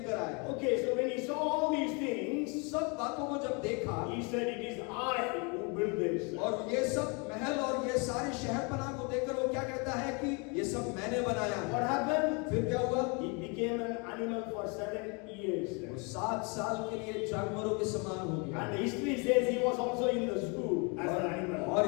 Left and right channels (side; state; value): right; quieter; 32.5 dB